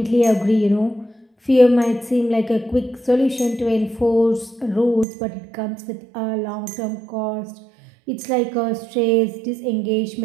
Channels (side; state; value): left; drops out; at 5.1 s